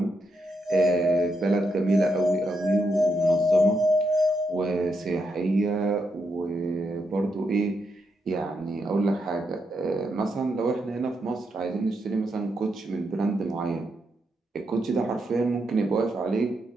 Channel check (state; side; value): normal; both; correlation 0.81